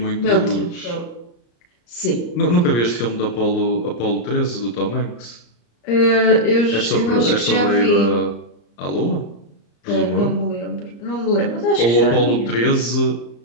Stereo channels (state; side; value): late; right; 34 ms